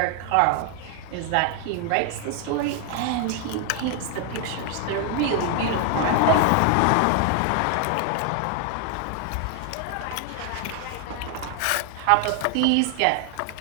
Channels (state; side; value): different; both; correlation 0.00